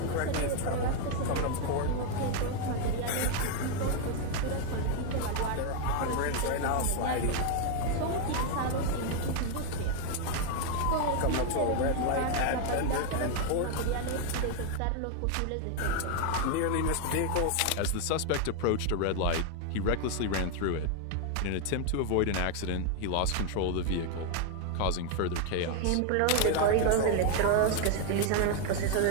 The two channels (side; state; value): both; different; correlation 0.01